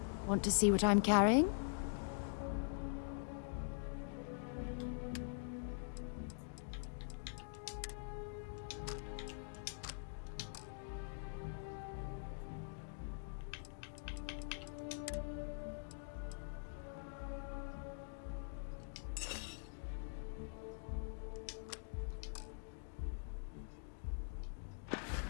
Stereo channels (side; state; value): right; silent; digital silence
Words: Want to see what I'm carrying?